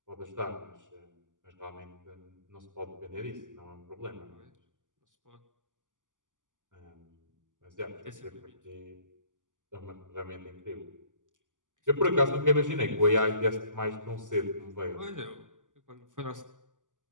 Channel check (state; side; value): late; left; 0.87 ms